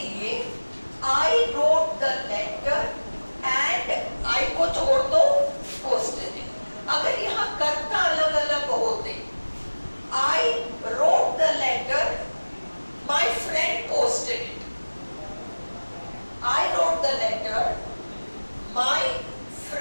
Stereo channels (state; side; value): inverted; both; correlation -1.00